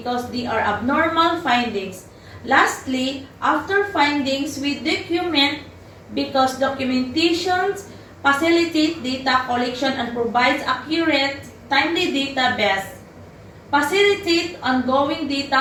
they are abnormal findings. Lastly, after findings, we document because documentations facilitate data collection and provides accurate, timely database. Facilitate ongoing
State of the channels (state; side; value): identical; both; correlation 1.00